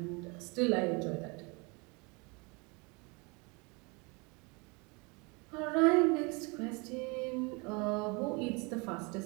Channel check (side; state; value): left; quieter; 29.4 dB